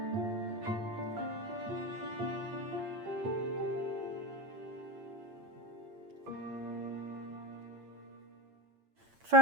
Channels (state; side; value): late; left; 8.8 ms